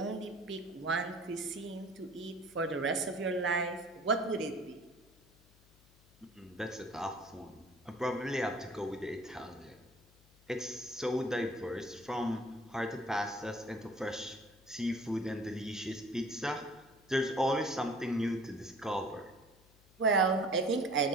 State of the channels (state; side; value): noise; left; hum, 28 dB below the sound